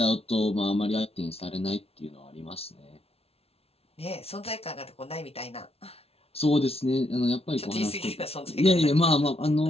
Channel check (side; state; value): right; late; 0.29 ms